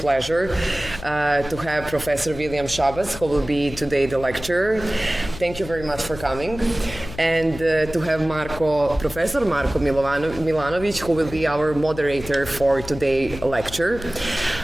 to have Professor William Schabas, who will be today the lecturer. Thank you very much for coming. And to have Professor Marko Milanović, who will be our moderator for today's lecture.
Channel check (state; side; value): noise; left; hum, 13 dB below the sound